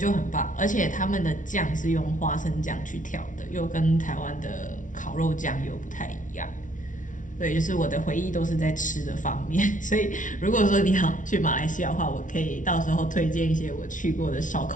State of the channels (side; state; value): right; late; 0.37 ms